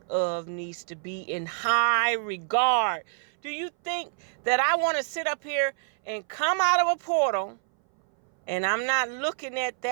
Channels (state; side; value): silent; left; 59 dB below the other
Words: of needs to be in high regard. Do you think that I want to sit up here and come out of a portal and I'm not looking at